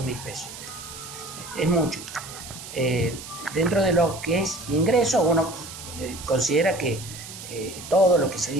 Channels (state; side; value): noise; right; hiss, 12 dB below the sound